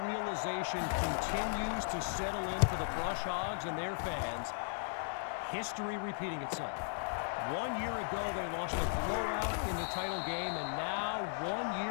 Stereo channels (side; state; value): right; silent; digital silence